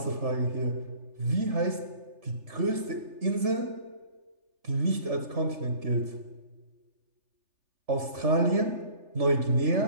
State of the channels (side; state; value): left; late; 3.4 ms